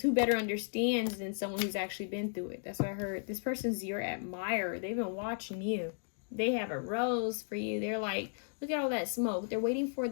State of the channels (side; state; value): right; silent; digital silence